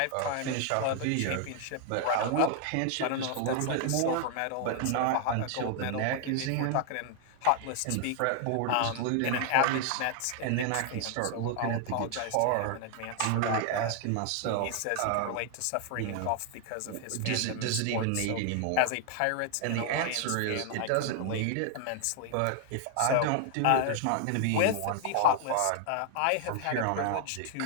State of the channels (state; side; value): different; both; correlation 0.00